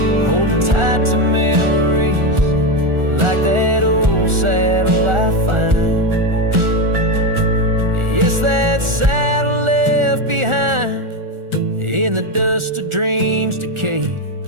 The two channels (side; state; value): left; late; 1.4 ms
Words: holding tight to memories like that old saddle I find. Yes, that saddle left behind in the dust of dreams decayed,